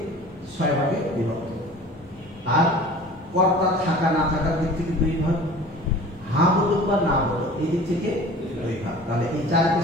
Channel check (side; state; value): both; normal; correlation 0.43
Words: 6 ভাগে বিভক্ত। আর কর্তা থাকা না থাকার দিক থেকে 2 ভাগ, হ্যাঁ বোধক বা না বোধক এই দিক থেকে 2 ভাগ। তাহলে এই 4 কে